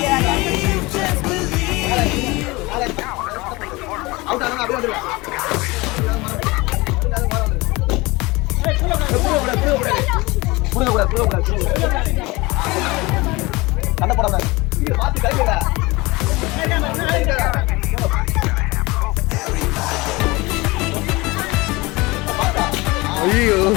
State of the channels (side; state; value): right; quieter; 23.0 dB